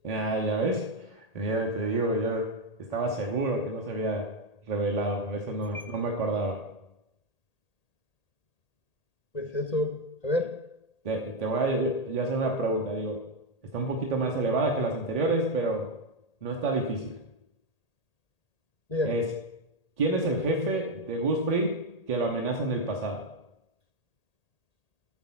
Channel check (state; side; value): late; right; 1.8 ms